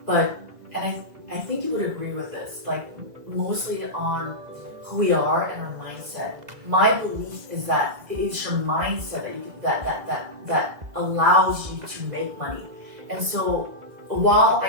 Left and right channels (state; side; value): late; left; 2.0 ms